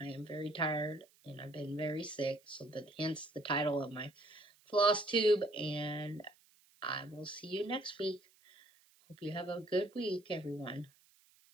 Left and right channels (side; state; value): right; noise; hiss, 30 dB below the sound